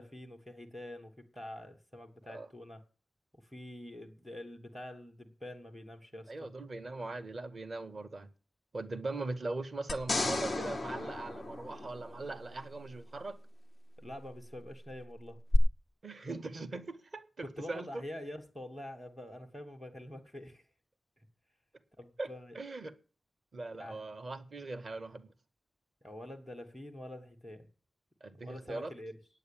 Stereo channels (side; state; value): both; normal; correlation 0.95